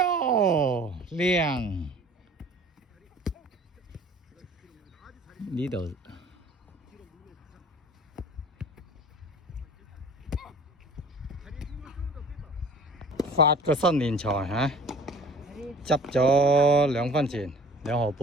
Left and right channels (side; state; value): both; normal; correlation 0.47